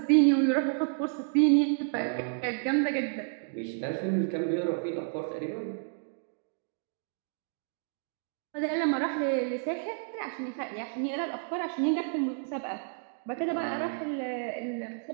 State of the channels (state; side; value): silent; left; digital silence